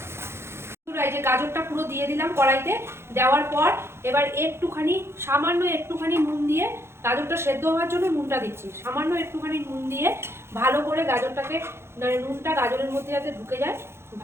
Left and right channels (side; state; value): left; late; 0.12 ms